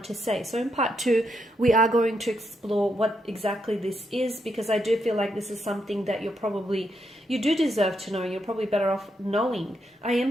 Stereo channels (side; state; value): both; normal; correlation 0.80